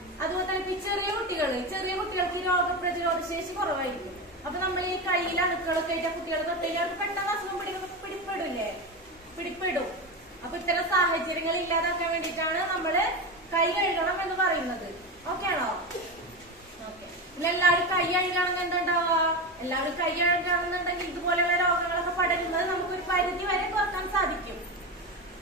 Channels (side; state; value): both; normal; correlation 0.19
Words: അതുപോലെ തന്നെ ചെറിയ കുട്ടികൾക്ക് രോഗപ്രതിരോധ ശേഷി കുറവായിരിക്കും. അപ്പൊ നമ്മൾ ഈ കയ്യിൽ അണുക്കളൊക്കെ ആയിട്ട് കുട്ടികൾ തൊട്ടവർക്ക് പെട്ടെന്ന് അസുഖം പിടിപ്പെടും. അപ്പൊ ഇത്തരം സാഹചര്യങ്ങൾ ഇല്ലാതാക്കാൻ വേണ്ടിയിട്ടാണ് നമ്മള് കൈ കഴുകണം എന്ന് പറയുന്നത്. ഓക്കെ ആണോ? ഓക്കെ. പിന്നെ എല്ലാവരും കൈ കഴുകണമെന്ന് എന്തുണ്ടാവുക? എല്ലാവരും കൈ കഴുകണമെന്നുണ്ടെങ്കിൽ ഇതുപോലെയുള്ള രോഗങ്ങളൊക്കെ പടരുന്നത് നമുക്കൊരു പരിധി വരെ കുറക്കാൻ സാധിക്കും.